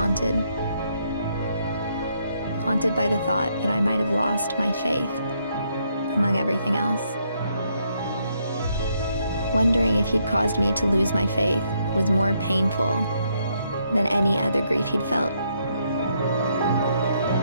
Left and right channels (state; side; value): inverted; both; correlation -0.74